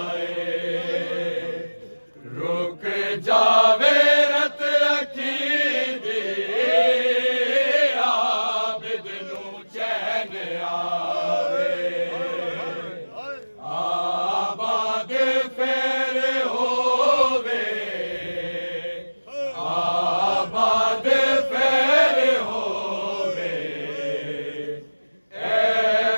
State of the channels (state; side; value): inverted; both; correlation -1.00